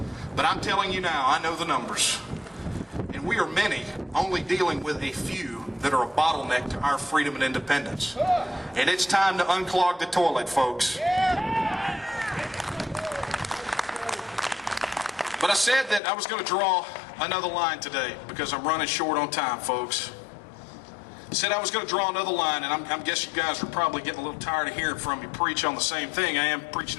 But I'm telling you now, I know the numbers. And we are many only dealing with a few that are a bottleneck to our freedom and independence. And it's time to unclog the toilet, folks. But I said that I was going to draw another line today because I'm running short on time, folks. I said I was going to draw another line, and I guess you guys are probably getting a little tired of hearing from me preach on the same thing. I am preaching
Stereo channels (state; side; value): drops out; right; at 16.0 s